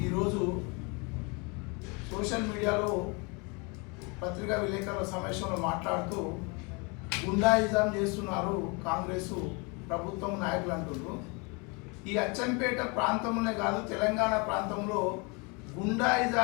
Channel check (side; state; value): right; quieter; 30.8 dB